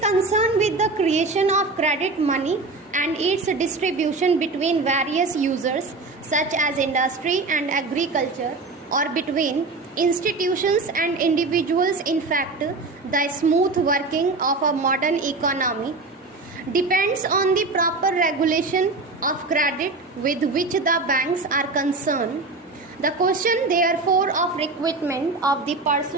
with the creation of credit money and its distribution between various users such as industry and agriculture, or between institutions and individuals. In fact, the smooth working of a modern economy depends on the proper regulation of credit with which the banks are concerned. The question, therefore, of recruitment of the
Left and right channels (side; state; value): left; quieter; 3.6 dB